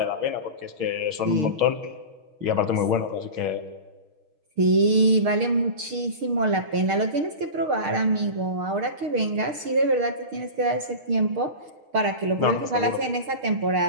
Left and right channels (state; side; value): late; left; 6.6 ms